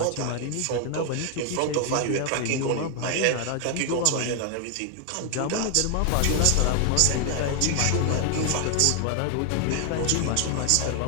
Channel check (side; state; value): both; different; correlation 0.00